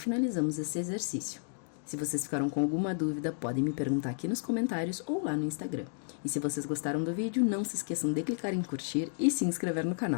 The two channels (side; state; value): right; silent; digital silence